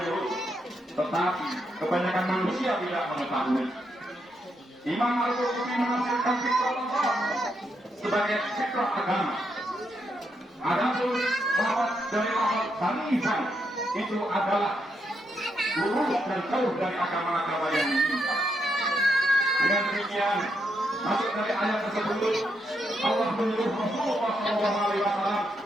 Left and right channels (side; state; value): both; normal; correlation 0.80